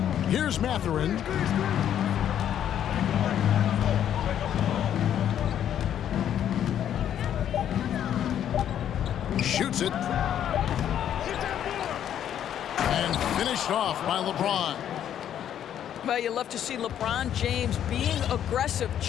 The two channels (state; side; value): quieter; right; 10.1 dB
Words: Here's Mathurin. Shoots it. And finished off by LeBron. Well, you love to see LeBron James being aggressive,